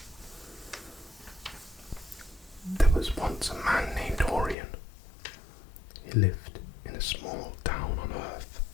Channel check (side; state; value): right; drops out; at 4.5 s